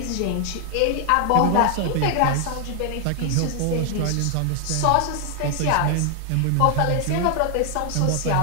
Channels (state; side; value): different; both; correlation 0.00